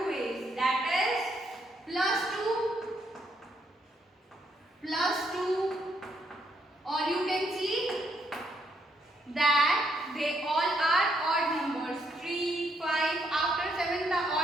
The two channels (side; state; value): both; normal; correlation 0.74